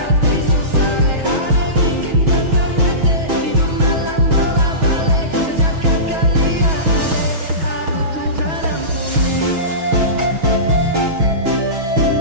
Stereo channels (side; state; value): left; late; 6.2 ms